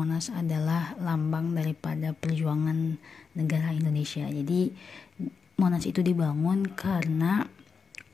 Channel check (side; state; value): right; quieter; 5.5 dB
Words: adalah lambang daripada perjuangan negara Indonesia. Jadi Monas itu dibangun karena